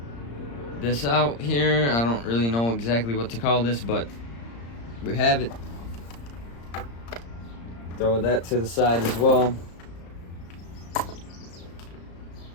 this out here. I don't really know exactly what to call this, but we have it. Throw that to the side as well.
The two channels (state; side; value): late; right; 35 ms